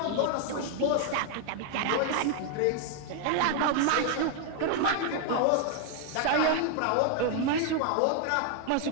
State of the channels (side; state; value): both; different; correlation 0.00